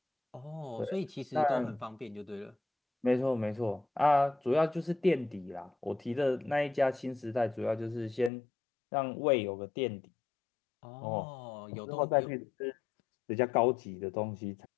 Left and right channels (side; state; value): right; drops out; at 8.3 s